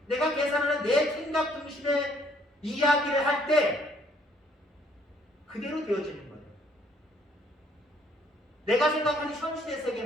내가 계산하는 내 생각 중심의 이야기를 할 때 그대로 되어지는 거예요. 내가 생각하는 현실의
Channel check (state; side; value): normal; both; correlation 0.64